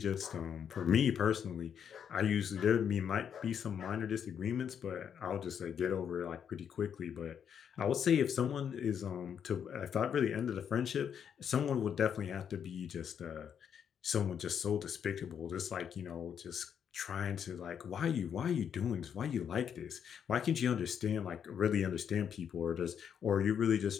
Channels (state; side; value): quieter; right; 8.1 dB